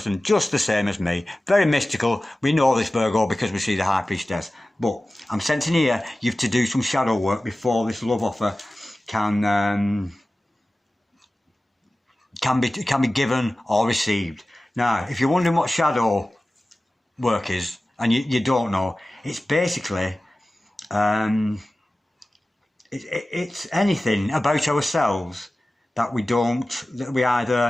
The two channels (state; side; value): normal; both; correlation 0.96